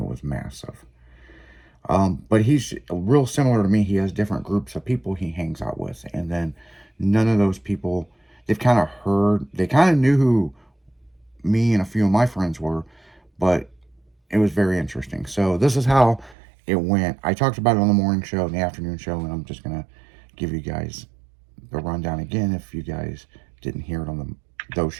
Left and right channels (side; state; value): left; drops out; at 16.4 s